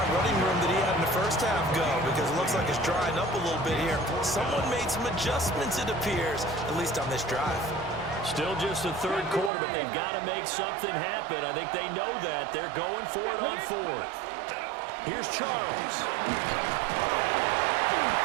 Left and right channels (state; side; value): drops out; left; at 9.5 s